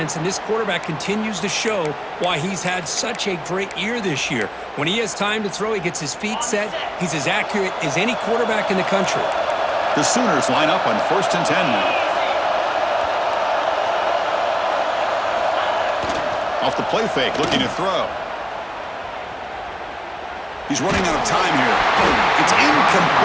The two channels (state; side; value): identical; both; correlation 1.00